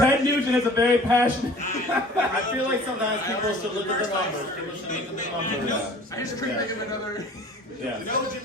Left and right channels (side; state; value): both; normal; correlation 0.47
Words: Nugent is a very passionate. I feel like sometimes people should look at the numbers. People should look at the numbers. I just couldn't think of another. Yeah. No